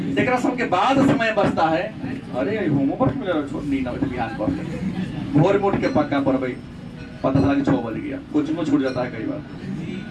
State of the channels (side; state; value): both; identical; correlation 1.00